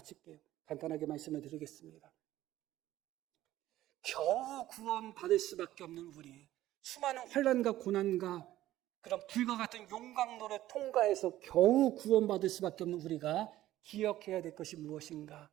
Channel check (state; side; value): quieter; left; 14.5 dB